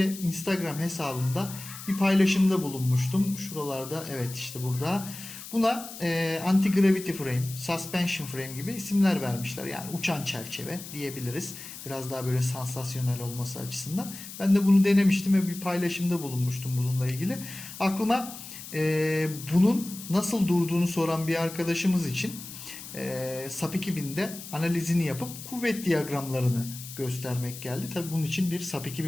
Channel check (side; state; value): left; noise; hiss, 12 dB below the sound